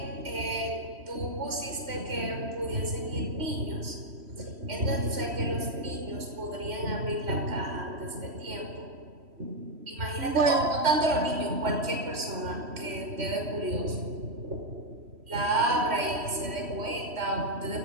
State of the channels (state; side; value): late; left; 3.1 ms